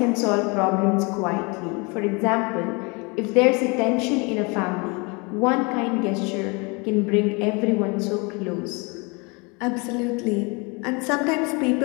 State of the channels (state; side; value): quieter; right; 29.3 dB